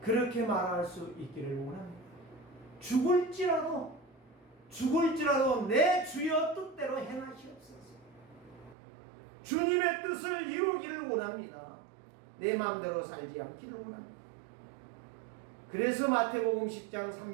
그렇게 말할 수 있기를 원합니다. 죽을지라도 내 주여 뜻대로 행하시옵소서. 주님의 뜻을 이루기를 원합니다. 내 마음대로 살지 않기를 원합니다. 그래서 마태복음 10장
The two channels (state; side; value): drops out; left; at 8.8 s